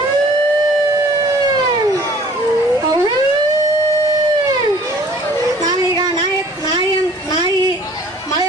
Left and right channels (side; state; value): both; normal; correlation 0.52